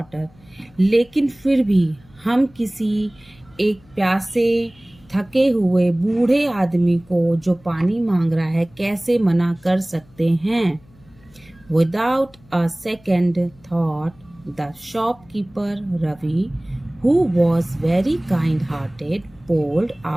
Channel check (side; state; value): left; noise; hum, 28 dB below the sound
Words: लेकिन फिर भी हम किसी एक प्यासे, थके हुए बूढ़े आदमी को जो पानी मांग रहा है कैसे मना कर सकते हैं? Without a second thought, the shopkeeper Ravi, who was very kind-hearted, poured